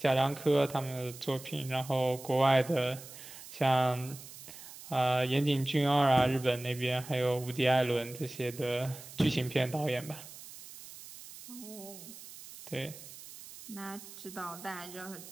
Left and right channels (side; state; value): right; noise; hiss, 15 dB below the sound